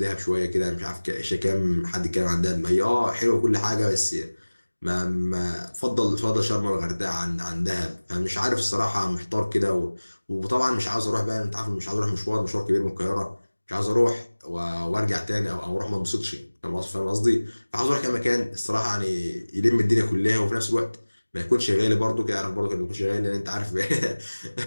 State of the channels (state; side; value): inverted; both; correlation -1.00